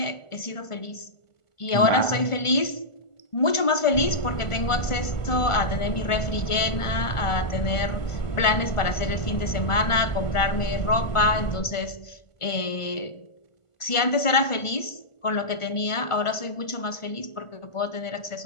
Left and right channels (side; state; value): right; late; 1.4 ms